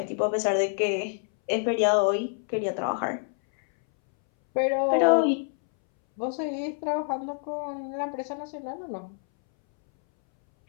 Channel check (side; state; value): right; silent; 60 dB below the other